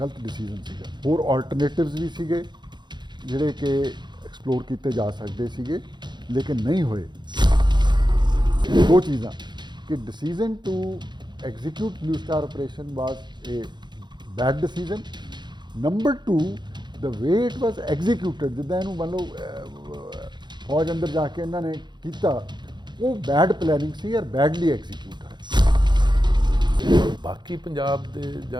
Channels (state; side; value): late; left; 0.21 ms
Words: ਡਿਸੀਜਨ ਸੀਗਾ। ਹੋਰ ਆਲਟਰਨੇਟਿਵਸ ਵੀ ਸੀਗੇ ਜਿਹੜੇ ਕਿ ਐਕਸਪਲੋਰ ਕੀਤੇ ਜਾ ਸਕਦੇ ਸੀਗੇ ਲੇਕਿਨ ਨਹੀਂ ਹੋਏ। ਦੋ ਚੀਜ਼ਾਂ ਕਿ decision to execute Blue Star operation was a bad decision. Number 2 the way it was executed, ਜਿੱਦਾਂ ਇਹਨੂੰ ਮੰਨ ਲਓ ਫੌਜ ਅੰਦਰ ਜਾ ਕੇ ਇਹਨਾਂ ਨੇ ਕੀਤਾ, ਉਹ ਬੈਡ ਪਲੈਨਿੰਗ ਸੀ ਔਰ ਬੈਡਲੀ ਐਗਜ਼ੀਕਿਊਟ ਹੈ। ਬਾਕੀ ਪੰਜਾਬ ਦੇ ਜਾਂ